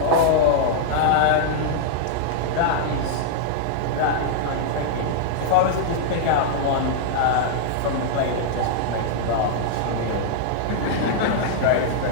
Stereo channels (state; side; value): different; both; correlation -0.01